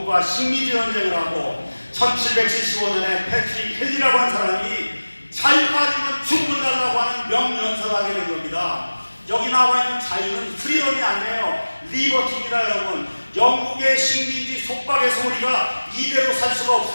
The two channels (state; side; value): inverted; both; correlation -1.00